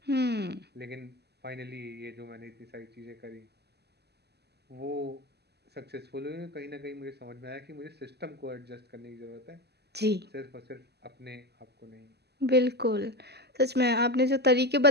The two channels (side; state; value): left; late; 0.48 ms